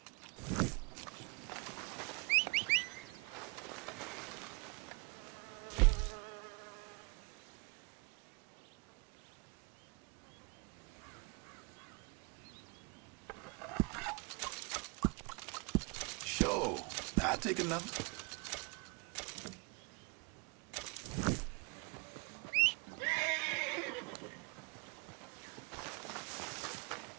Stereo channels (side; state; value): left; quieter; 32.6 dB